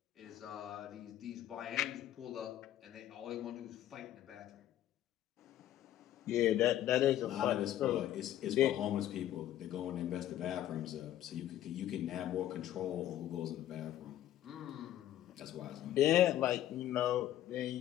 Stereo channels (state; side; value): quieter; right; 12.4 dB